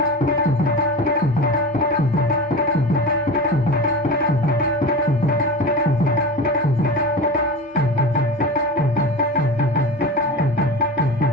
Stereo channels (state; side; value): normal; both; correlation 0.28